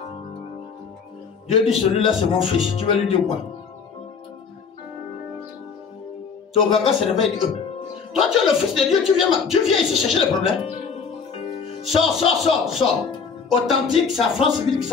Dieu dit, celui-là c'est mon fils. Tu vas lui dire quoi? Le ganga se réveille et dit, toi tu es le fils de Dieu, tu viens ici chercher les problèmes. Sors, sors, sors, sors. Authentique, c'est à France civile que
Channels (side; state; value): right; quieter; 5.8 dB